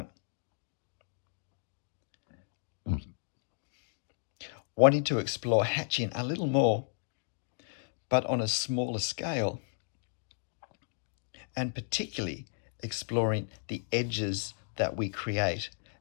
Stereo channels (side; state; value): right; silent; digital silence